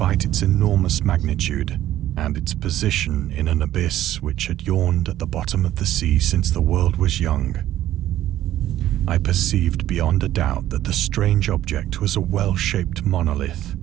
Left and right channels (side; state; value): left; quieter; 13.2 dB